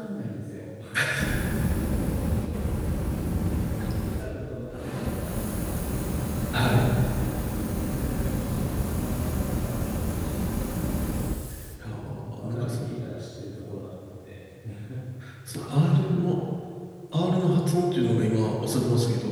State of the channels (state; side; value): identical; both; correlation 1.00